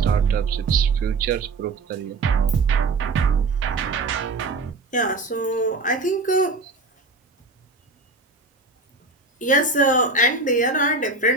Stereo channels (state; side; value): quieter; left; 3.6 dB